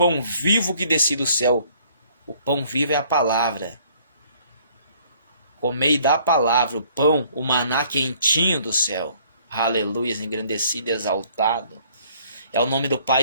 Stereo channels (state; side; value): inverted; both; correlation -0.60